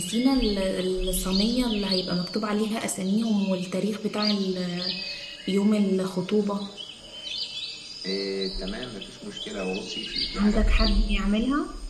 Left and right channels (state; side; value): identical; both; correlation 1.00